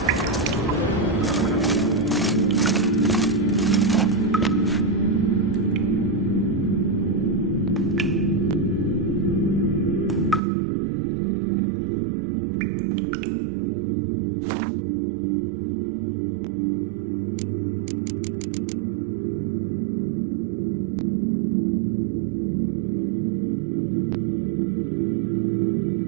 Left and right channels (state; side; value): drops out; left; at 10.4 s